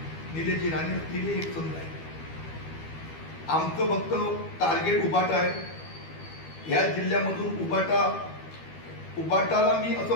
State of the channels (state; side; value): late; right; 12 ms